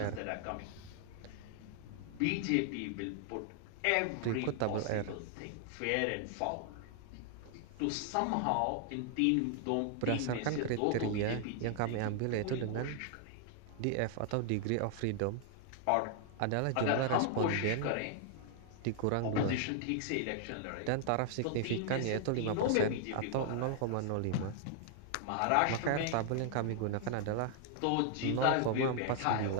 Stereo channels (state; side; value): different; both; correlation 0.00